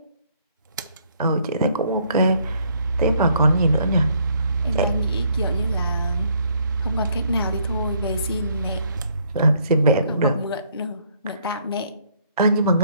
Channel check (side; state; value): both; inverted; correlation -0.67